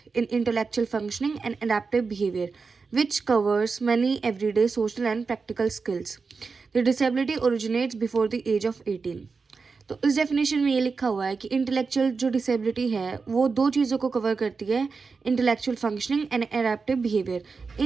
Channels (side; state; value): left; quieter; 4.7 dB